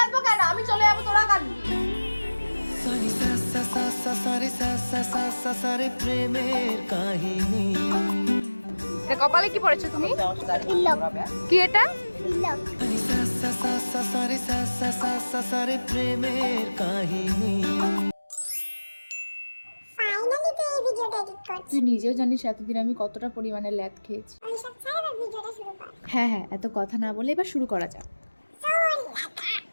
কেন? আমি চলে যাবো, তোরা কাঁদবি। এটা কপালে কি পড়েছো তুমি? কি এটা? তুই নিজেও জানিস এতদিন আমি কতটা পরিমাণে ল্যাদ খেয়েছি। হ্যাঁ হ্যাঁ, এত কথা না বলে এবার শুরু করা যাক।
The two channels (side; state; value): both; inverted; correlation -1.00